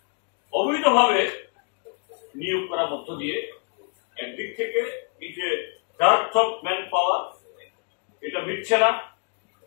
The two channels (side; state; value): right; quieter; 39.8 dB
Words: অবৈধভাবে নিয়োগ করার মধ্য দিয়ে একদিক থেকে এই যে ডেপথ অফ ম্যান পাওয়ার এটা মিটছে না,